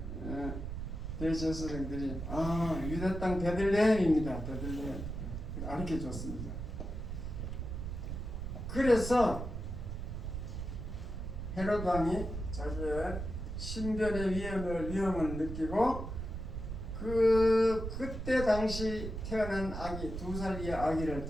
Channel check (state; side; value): noise; right; rumble, 6 dB below the sound